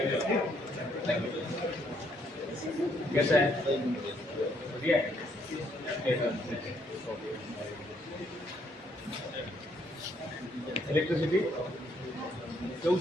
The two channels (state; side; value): normal; both; correlation 0.70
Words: कैसा है बढ़िया है इलेक्ट्रिसिटी કેવું